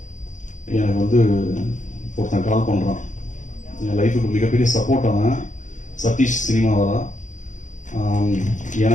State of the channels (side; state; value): right; late; 0.36 ms